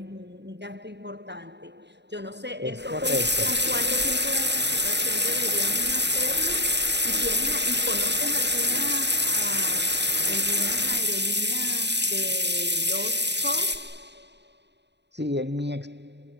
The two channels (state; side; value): late; left; 0.50 ms